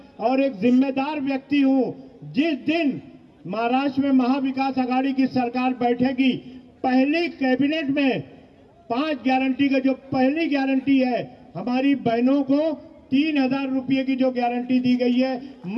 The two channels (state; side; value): identical; both; correlation 1.00